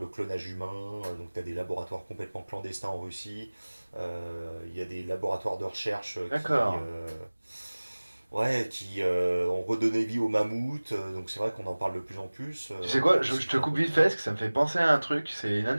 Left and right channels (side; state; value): both; inverted; correlation -1.00